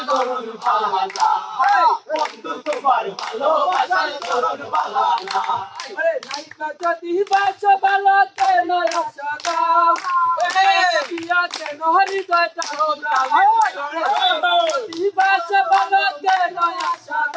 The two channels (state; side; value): identical; both; correlation 1.00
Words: ধরন ভালো বন্ধু তোমার ভালোবাসার ধরন ভালো না আরে নাইকা যদি বাসো ভালো কেন আশা দাও পিয়া কেন হৃদয় তাও যদি বাসো ভালো কেন আশা